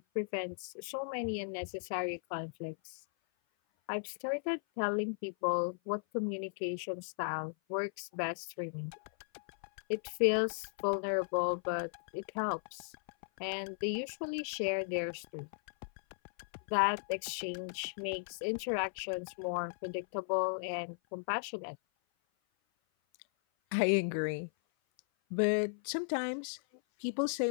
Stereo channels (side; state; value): right; silent; 54 dB below the other